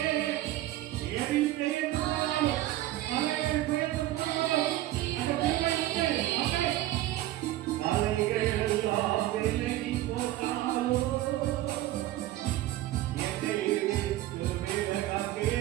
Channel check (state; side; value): quieter; left; 15.2 dB